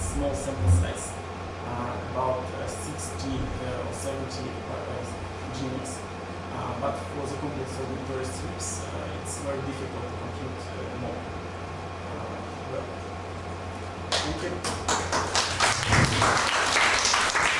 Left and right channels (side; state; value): both; identical; correlation 1.00